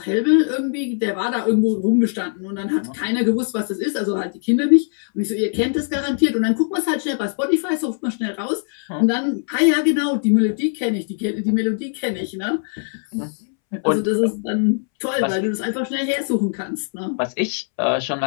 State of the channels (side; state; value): right; silent; 65 dB below the other